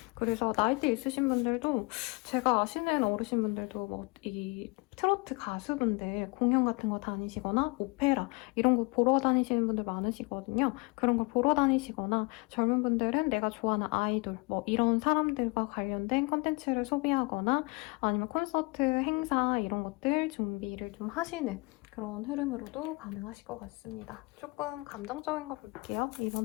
그래서 나이대 있으신 분들도, 제가 아시는 어르신분들도 이 트로트 가수분들 공연 같은 거 다니시거나 오페라 이런 거 보러 다니시는 분들 많으시거든요. 그런 걸 보러 다니시거나, 젊은 분들은 내가 좋아하는 아이돌 이런 사람들과 관련된 컨텐츠를 소비하거나, 아니면 콘서트, 행사 이런 것들 준비를 좀 하시는 그런 흐름으로도 가능하실 것 같습니다. 조금 감정적인 거 볼게요.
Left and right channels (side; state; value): right; quieter; 28.1 dB